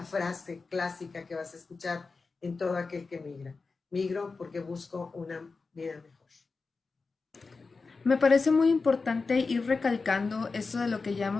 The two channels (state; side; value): quieter; right; 4.3 dB